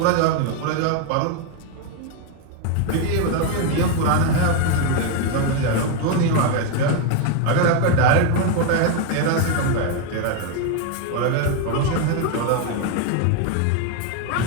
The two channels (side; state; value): both; different; correlation 0.01